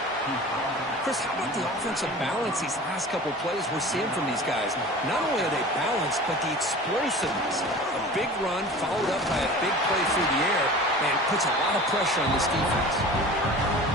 Chris, how about the offensive balance these last couple plays we're seeing from these guys? Not only are they balanced, but the explosiveness. A big run followed up by a big play through the air, and puts a lot of pressure on this defense.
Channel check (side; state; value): both; normal; correlation 0.39